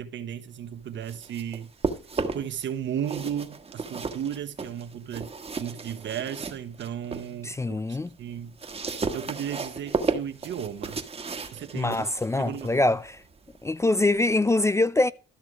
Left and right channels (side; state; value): both; normal; correlation 0.63